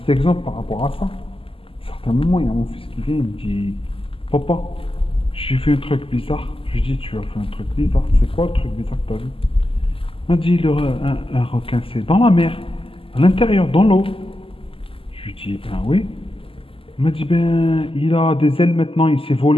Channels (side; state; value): right; late; 0.26 ms